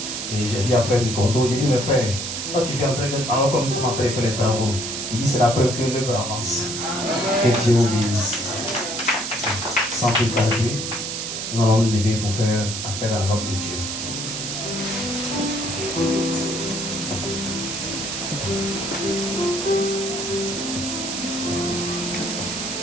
Et j'ai dit à frère Nicondo, j'ai dit, mes frères, quand tu viens alors que nous sommes en train de faire les travaux, il dit, c'est la preuve que l'œuvre avance. Que Dieu vous bénisse. Sans plus tarder, nous allons nous lever pour faire appel à l'homme de Dieu.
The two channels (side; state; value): right; noise; hiss, 4 dB below the sound